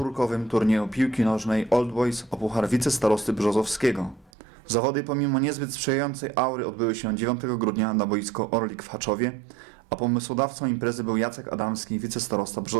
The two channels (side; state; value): left; drops out; at 4.3 s